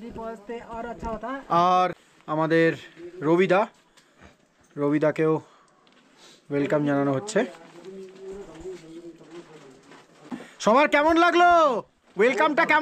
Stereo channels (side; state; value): both; identical; correlation 1.00